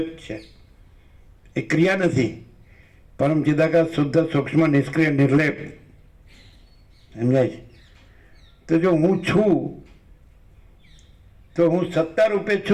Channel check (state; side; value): identical; both; correlation 1.00